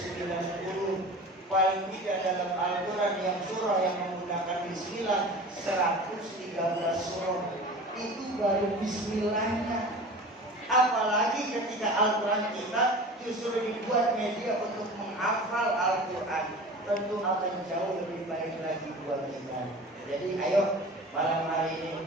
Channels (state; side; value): normal; both; correlation 0.38